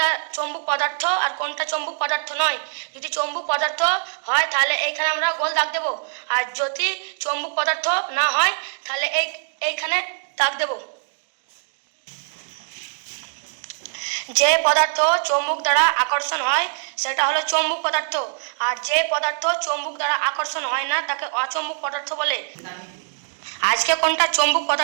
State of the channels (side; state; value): left; silent; 63 dB below the other